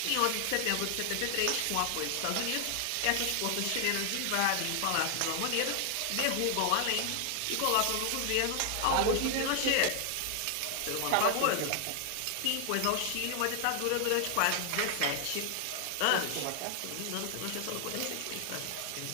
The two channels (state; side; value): different; both; correlation 0.00